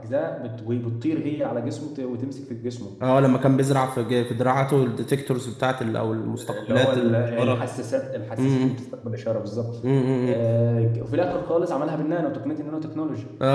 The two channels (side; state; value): both; identical; correlation 1.00